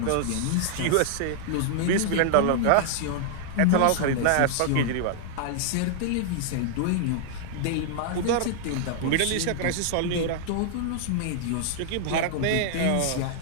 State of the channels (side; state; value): both; different; correlation -0.01